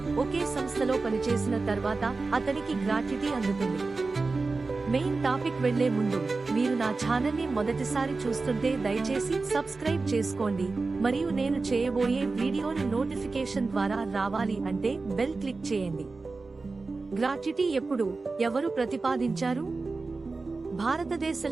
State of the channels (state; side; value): quieter; left; 3.9 dB